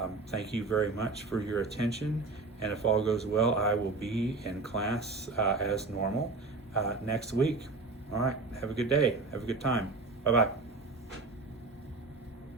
thank you very much for your attention, and if all goes well, I will be in class as normal next week. All right, have a good day. Have a good time. Bye-bye.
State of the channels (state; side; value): quieter; left; 3.7 dB